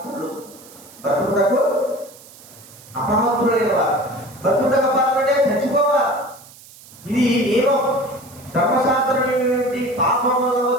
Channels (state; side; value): noise; right; hiss, 21 dB below the sound